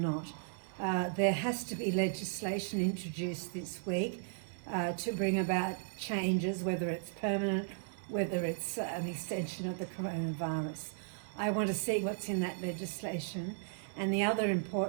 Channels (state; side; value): silent; left; 54 dB below the other